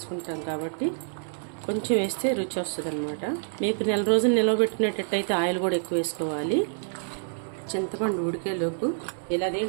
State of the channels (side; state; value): left; silent; 60 dB below the other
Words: కాబట్టి కొంచెం వేస్తే రుచి వస్తుంది అనమాట. మీకు 1 నెల రోజులు నిలవబెట్టినట్టయితే ఆయిల్ కూడా ఎక్కువ వేసుకోవాలి. చింతపండు ఉడికేలోపు ఇలా